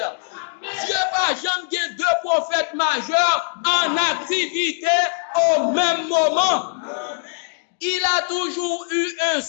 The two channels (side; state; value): right; silent; digital silence